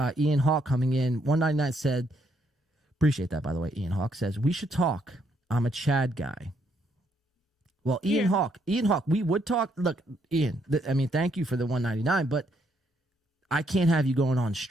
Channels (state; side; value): normal; both; correlation 0.73